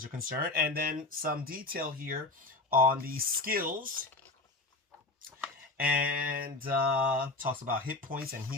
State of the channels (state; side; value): quieter; right; 3.3 dB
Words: are concerned. And then some detail here on the skills. And talks about hit points and